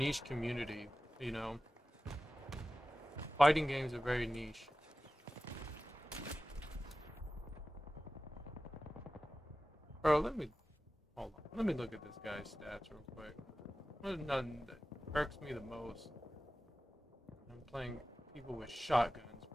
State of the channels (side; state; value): both; normal; correlation 0.96